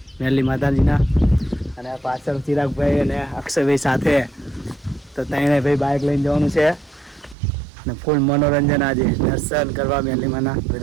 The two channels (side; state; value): left; drops out; at 7.4 s